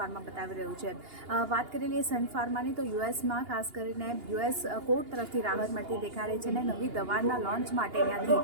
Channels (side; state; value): left; late; 2.8 ms